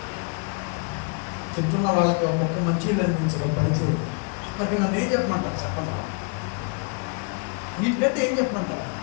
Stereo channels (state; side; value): quieter; right; 35.7 dB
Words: తింటున్న వాళ్ళకి ఒక్క మంచి అనిపించడం పరిచయం. మరి నన్ను ఏం చెప్పమంటారు చెప్పండి? వీటికంటే ఏం చెప్పమంటారు?